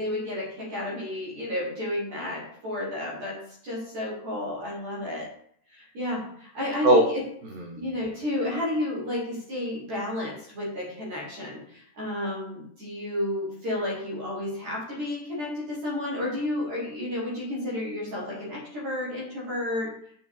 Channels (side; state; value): left; late; 13 ms